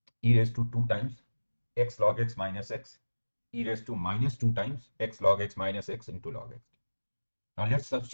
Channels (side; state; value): both; inverted; correlation -1.00